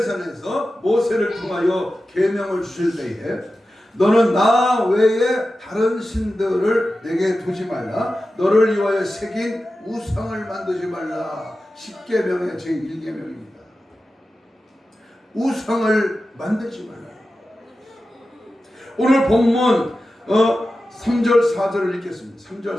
모세를 통하여 계명을 주실 때에 너는 나 외에 다른 신들을 내게 두지 말라. 너를 위하여 새긴 우상을 만들지 말라. 10계명의 제1계명입니다. 우상을 만들지 말라. 오늘 본문 3절 4절을 읽겠습니다. 3절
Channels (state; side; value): normal; both; correlation 0.93